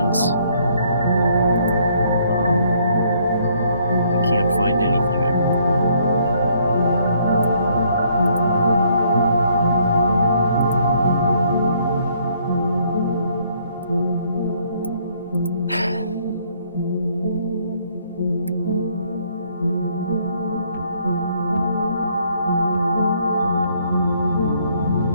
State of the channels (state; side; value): inverted; both; correlation -0.67